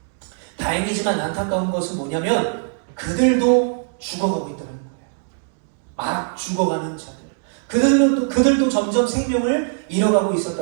다행이지만 안타까운 것은 뭐냐면 그들도 죽어가고 있다는 거예요. 막 죽어가는 자들. 그들도 점점 생명을 잃어가고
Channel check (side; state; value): left; silent; digital silence